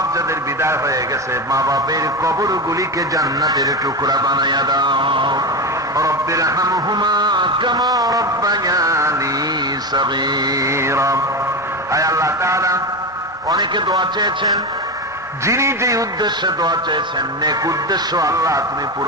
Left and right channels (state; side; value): normal; both; correlation 0.18